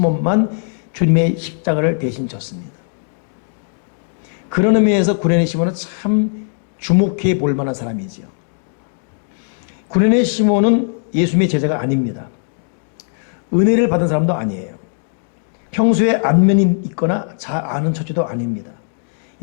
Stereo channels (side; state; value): right; silent; digital silence